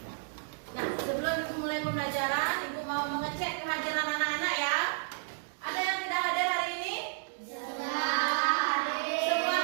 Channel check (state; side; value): silent; left; digital silence